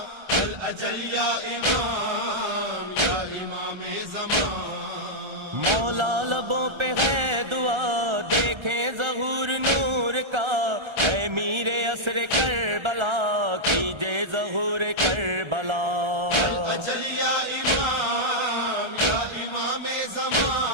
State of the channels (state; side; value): late; left; 1.3 ms